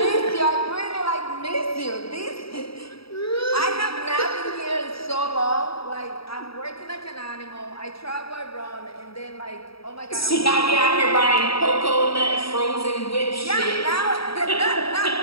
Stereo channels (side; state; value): right; late; 0.76 ms